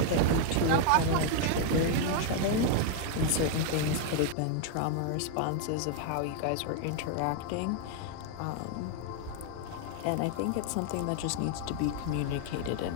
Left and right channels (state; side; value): different; both; correlation 0.00